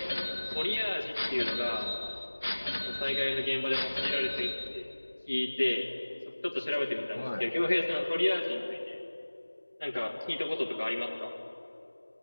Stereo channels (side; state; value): both; inverted; correlation -1.00